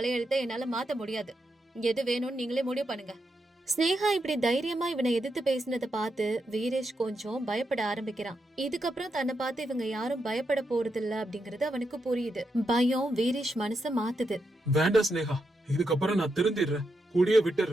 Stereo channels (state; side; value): normal; both; correlation 0.84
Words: என்னால மாத்த முடியாது. எது வேணும்னு நீங்களே முடிவு பண்ணுங்க. ஸ்னேகா இப்படி தைரியமா இவனை எதிர்த்து பேசினதை பார்த்து வீரேஷ் கொஞ்சம் பயப்பட ஆரம்பிக்கிறான். இதுக்கப்புறம் தன்னை பார்த்து இவங்க யாரும் பயப்பட போறது இல்ல அப்படிங்கறது அவனுக்கு புரியுது. பயம் வீரேஷ் மனச மாத்துது. வேண்டாம் ஸ்னேகா, இதுக்கப்புறம் நான் திருந்திடுறேன், குடிய